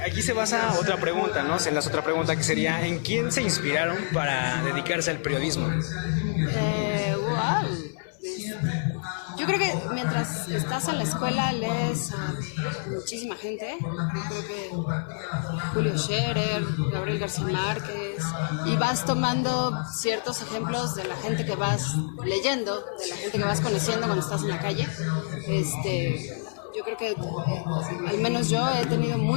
aquí se basa otra pregunta, ¿no? Se enlaza otra pregunta que sería, ¿en quién se inspiraron para dedicarse al periodismo? Wow. Yo creo que mientras estás en la escuela lees a muchísima gente. Yo creo que Julio Scherer, Gabriel García Márquez, y vas tomando ciertos ejemplos de la gente que vas leyendo, de la gente que vas conociendo cuando estás en la calle. Yo creo que al menos yo he tenido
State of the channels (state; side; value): silent; right; 59 dB below the other